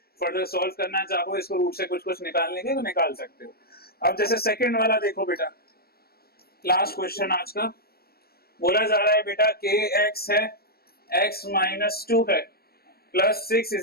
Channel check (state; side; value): late; right; 0.45 ms